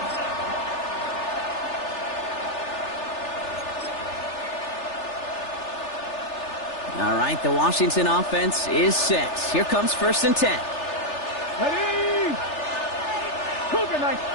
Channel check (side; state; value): right; late; 3.4 ms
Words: All right, the Washington offense is set. Here comes 1st and 10. Ready! Cougar Knight,